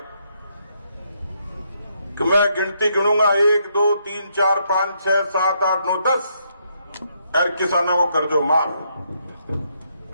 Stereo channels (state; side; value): inverted; both; correlation -0.75